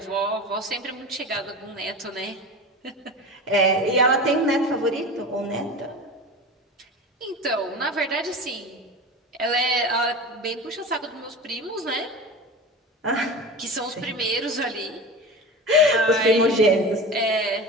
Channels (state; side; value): normal; both; correlation 0.31